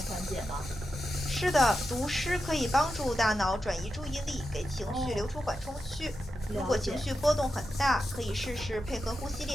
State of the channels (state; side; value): normal; both; correlation 0.89